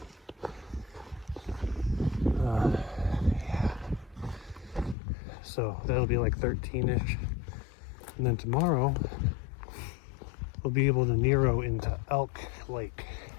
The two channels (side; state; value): right; drops out; at 5.0 s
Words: Yeah. So that'll be like 13-ish. And then tomorrow we'll be able to Nero into Elk Lake.